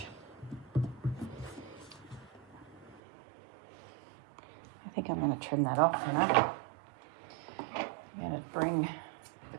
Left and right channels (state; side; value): drops out; left; at 3.0 s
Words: I think I'm going to trim that off, you know. I'm going to bring